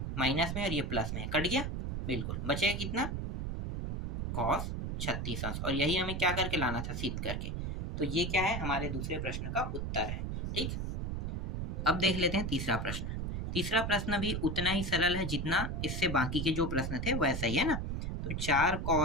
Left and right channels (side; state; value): right; noise; rumble, 2 dB below the sound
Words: माइनस में और ये प्लस में है, कट गया, बिल्कुल बचेगा कितना, कॉस 36 अंश, और यही हमें क्या करके लाना था, सिद्ध करके। तो ये क्या है, हमारे दूसरे प्रश्न का उत्तर है। ठीक, अब देख लेते हैं तीसरा प्रश्न। तीसरा प्रश्न भी उतना ही सरल है जितना इससे बाकी के जो प्रश्न थे वैसा ही है ना। तो 4